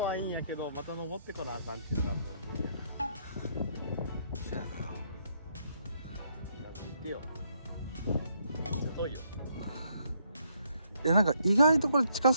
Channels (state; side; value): inverted; both; correlation -0.72